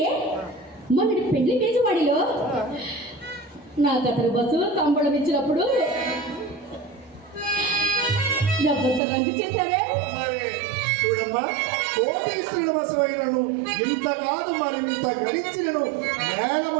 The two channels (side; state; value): left; drops out; at 9.0 s